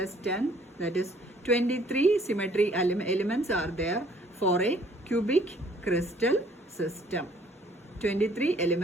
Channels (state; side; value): normal; both; correlation 0.60